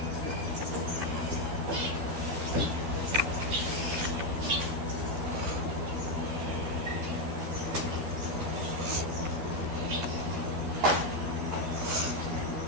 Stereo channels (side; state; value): left; late; 12 ms